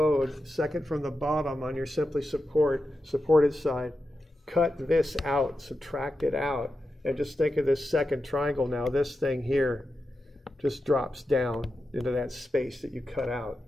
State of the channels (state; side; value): normal; both; correlation 0.90